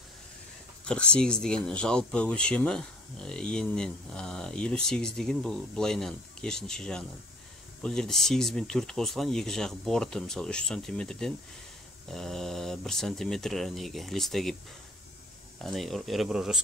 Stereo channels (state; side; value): normal; both; correlation 0.52